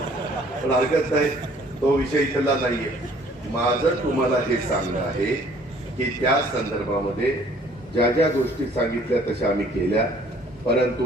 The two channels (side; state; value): both; normal; correlation 0.57